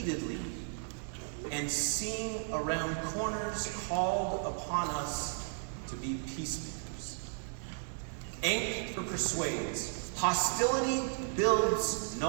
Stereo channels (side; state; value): left; silent; 55 dB below the other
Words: and seeing around corners called upon us to be peacemakers. Anger persuades. Hostility builds